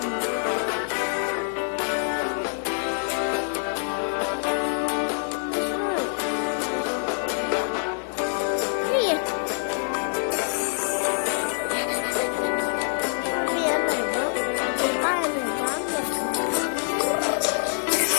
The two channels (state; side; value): silent; right; digital silence